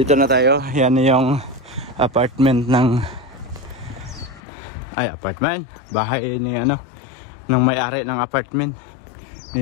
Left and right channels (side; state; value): right; drops out; at 4.4 s